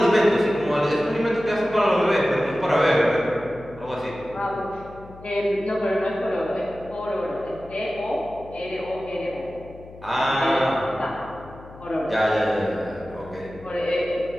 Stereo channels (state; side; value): noise; left; hum, 18 dB below the sound